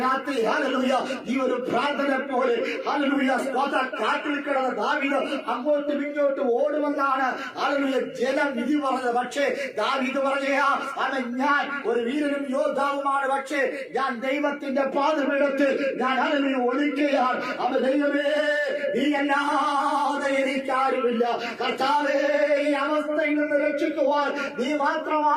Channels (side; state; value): both; identical; correlation 1.00